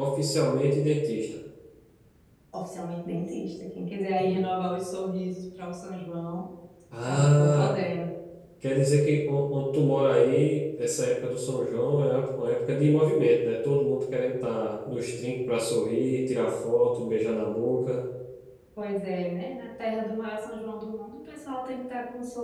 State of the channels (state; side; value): identical; both; correlation 1.00